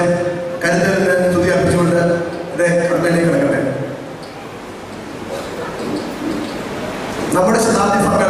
കരുതലിന് സ്തുതി അർപ്പിച്ചുകൊണ്ട് എൻ്റെ കടമയിലേക്ക് കിടക്കട്ടെ. നമ്മുടെ ശതാബ്ദി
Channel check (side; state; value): both; identical; correlation 1.00